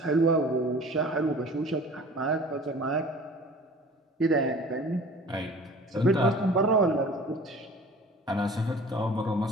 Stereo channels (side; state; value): both; normal; correlation 0.45